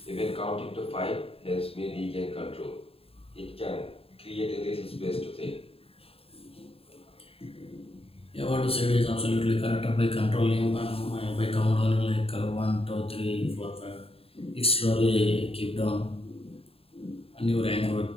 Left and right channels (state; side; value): late; right; 0.27 ms